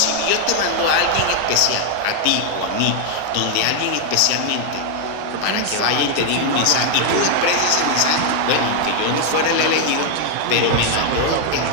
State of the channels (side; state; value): both; different; correlation 0.00